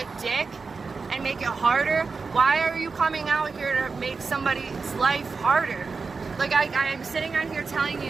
dick and make it harder, why are you coming out here to make somebody's life harder? Like, I'm sitting on here telling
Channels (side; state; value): left; quieter; 4.6 dB